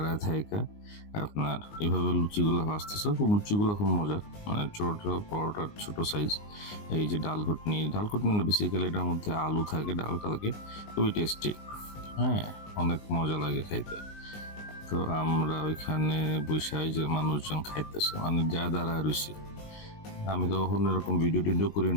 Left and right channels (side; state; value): right; late; 19 ms